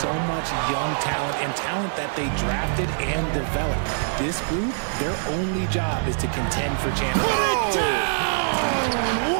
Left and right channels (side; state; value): left; silent; digital silence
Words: much young talent and talent that they drafted and developed. This group, their only job is to contend for championships. Put it down!